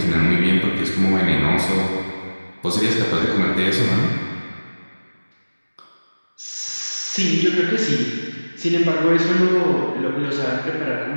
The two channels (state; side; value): inverted; both; correlation -1.00